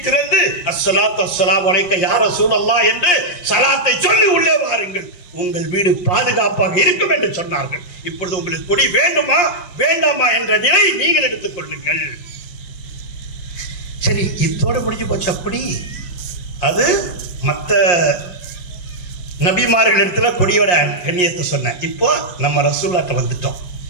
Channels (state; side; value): late; right; 5.7 ms